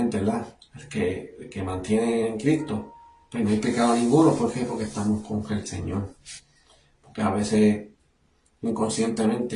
¿verdad? El que mantiene en Cristo, pues no hay pecado ninguno. ¿Por qué? Porque estamos con el Señor. Porque a veces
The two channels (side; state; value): both; identical; correlation 1.00